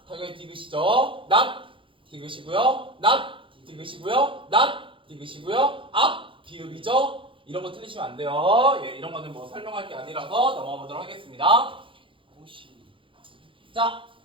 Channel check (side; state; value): left; late; 0.25 ms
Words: 당연히 디귿이죠. 낫 디귿이고요. 낫 디귿이고요. 낫 디귿이고요. 앞 비읍이죠. 이런 거 틀리시면 안 돼요. 예, 이런 거는 뭐 설명할 게 아니라서 넘어가 보도록 하겠습니다. 자,